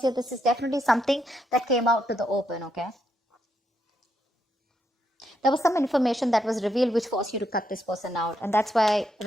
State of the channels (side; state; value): both; normal; correlation 0.78